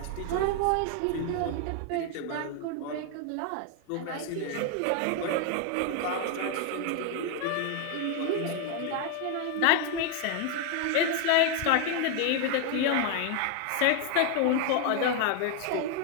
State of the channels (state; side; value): different; both; correlation 0.01